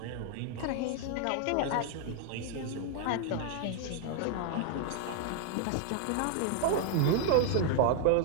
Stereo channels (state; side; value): different; both; correlation 0.00